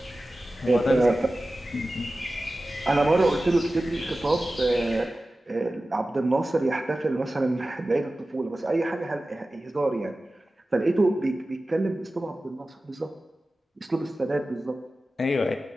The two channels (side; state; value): both; normal; correlation 0.95